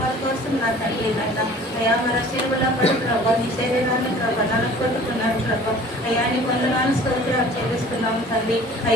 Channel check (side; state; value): both; normal; correlation 0.47